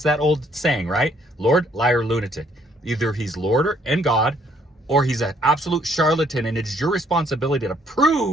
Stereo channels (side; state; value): both; normal; correlation 0.66